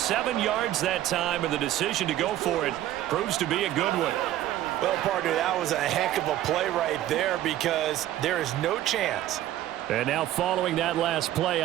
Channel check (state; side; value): quieter; left; 13.3 dB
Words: yards that time, and the decision to go for it proves to be a good one. Well, partner, that was a heck of a play right there because there is no chance. And now following that last play,